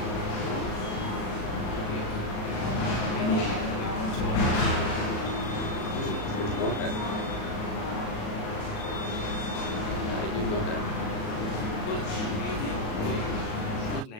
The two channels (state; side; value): late; right; 37 ms